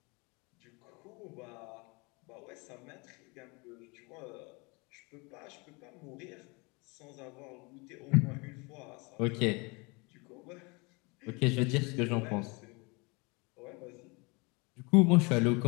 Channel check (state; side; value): quieter; right; 28.5 dB